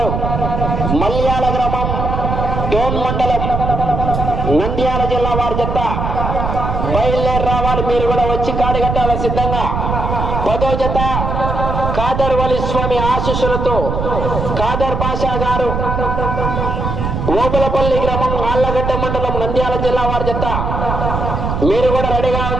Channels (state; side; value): noise; right; rumble, 2 dB below the sound